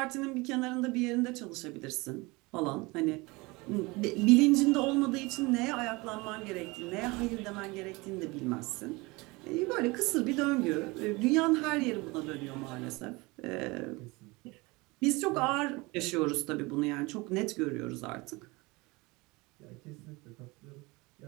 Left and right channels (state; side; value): quieter; left; 24.2 dB